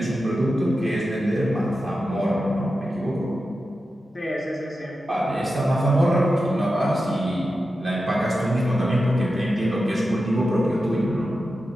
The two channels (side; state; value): both; normal; correlation 0.91